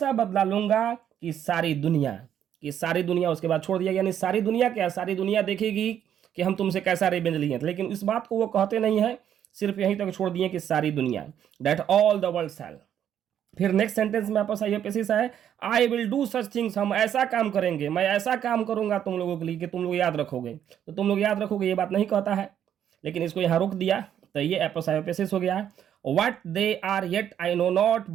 बदला लूंगा कि सारी दुनिया उसके बाद छोड़ दिया, यानी सारी दुनिया क्या, सारी दुनिया देखेगी कि हम तुमसे कैसा रिवेंज लिए, लेकिन इस बात को वो कहते नहीं है, सिर्फ यहीं तक छोड़ दिए कि सारी दुनिया, दैट ऑल द वर्ल्ड शैल। फिर नेक्स्ट सेंटेंस में आपस आईएपीएस है, I will do such things, हम ऐसा काम करेंगे, मैं ऐसा काम करूंगा तुम लोगों के लिए कि तुम लोग याद रखोगे, तो तुम लोग याद रखोगे ये बात नहीं कहता है, लेकिन इसको यहाँ रोक दिया, तो ये एपस आईएपीएस हो गया। What they are yet I know not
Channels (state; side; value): quieter; left; 9.8 dB